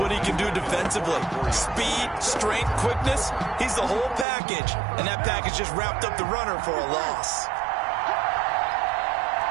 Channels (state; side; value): drops out; left; at 4.2 s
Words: he can do defensively. Speed, strength, quickness, he's the whole package. And that package just wrapped up the runner for a loss.